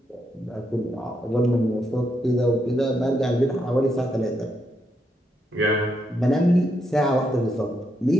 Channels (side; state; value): both; normal; correlation 0.79